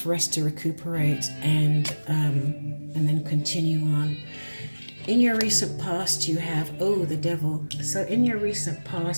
rest to recuperate and then continue on. In your recent past, you have, the devil. So in your recent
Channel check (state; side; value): inverted; both; correlation -1.00